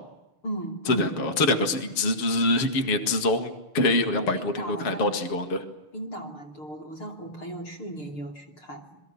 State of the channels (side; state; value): right; late; 6.6 ms